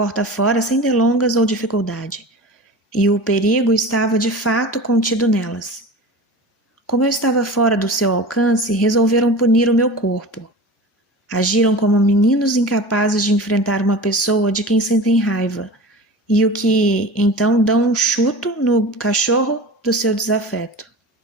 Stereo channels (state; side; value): normal; both; correlation 0.34